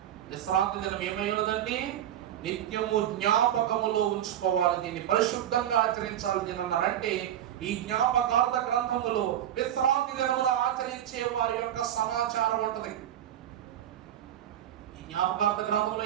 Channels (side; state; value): left; quieter; 11.2 dB